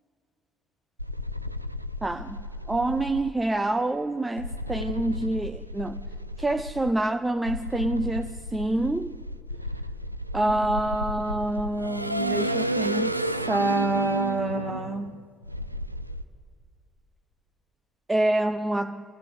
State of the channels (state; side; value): normal; both; correlation 0.57